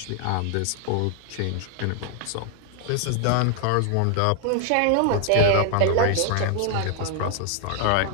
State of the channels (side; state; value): both; different; correlation 0.00